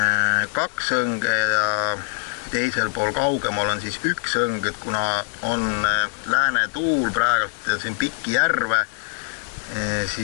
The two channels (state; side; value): silent; right; digital silence